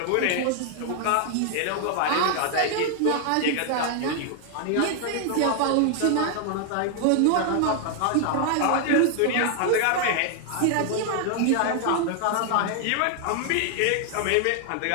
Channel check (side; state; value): both; different; correlation 0.00